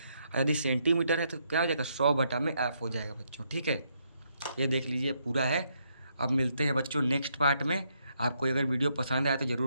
और यदि सेंटीमीटर है तो क्या हो जाएगा, 100 में F हो जाएगा बच्चों, ठीक है। ये देख लीजिए पूरा है। अब मिलते हैं बच्चों नेक्स्ट पार्ट में। आपको अगर वीडियो पसंद आया तो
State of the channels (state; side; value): inverted; both; correlation -0.76